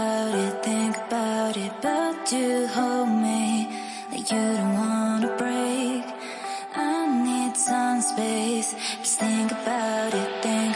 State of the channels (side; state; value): both; identical; correlation 1.00